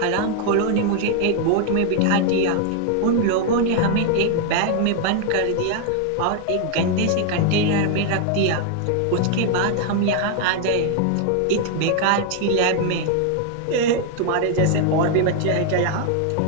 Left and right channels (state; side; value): different; both; correlation 0.00